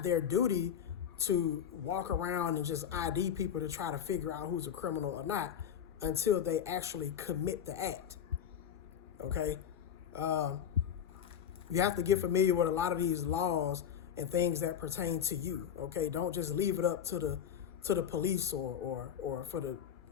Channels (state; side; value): quieter; right; 8.8 dB